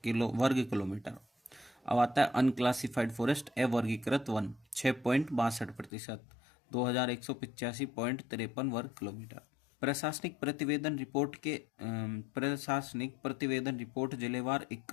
वर्ग किलोमीटर। अब आता है अनक्लासिफाइड फॉरेस्ट अवर्गीकृत वन 6.62%, 2,185.53 वर्ग किलोमीटर। प्रशासनिक प्रतिवेदन रिपोर्ट जिलेवार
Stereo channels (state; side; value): drops out; right; at 5.9 s